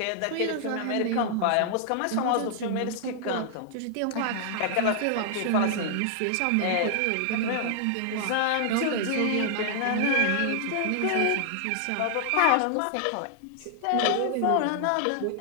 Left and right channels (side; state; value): both; different; correlation -0.01